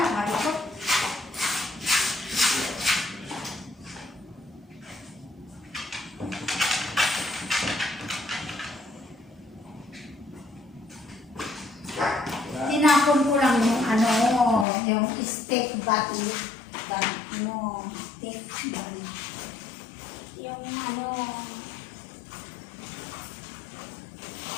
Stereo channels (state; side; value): drops out; right; at 14.7 s